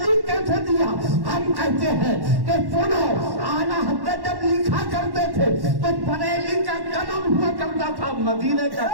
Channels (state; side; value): late; left; 1.1 ms